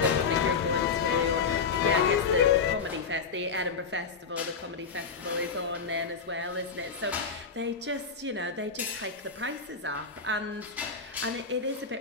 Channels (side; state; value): right; quieter; 5.3 dB